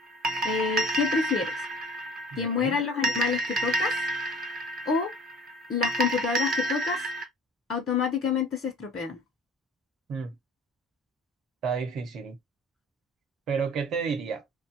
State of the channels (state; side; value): normal; both; correlation 0.46